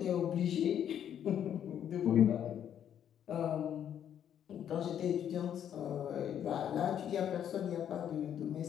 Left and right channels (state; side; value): quieter; right; 9.6 dB